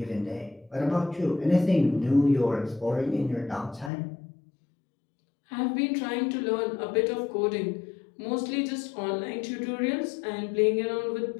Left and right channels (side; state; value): right; drops out; at 3.9 s